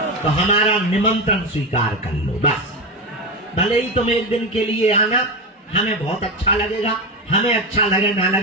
तो हमारा निमंत्रण स्वीकार कर लो बस। भले ही तुम एक दिन के लिए आना, हमें बहुत अच्छा लगेगा। हमें अच्छा लगे ना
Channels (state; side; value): normal; both; correlation 0.16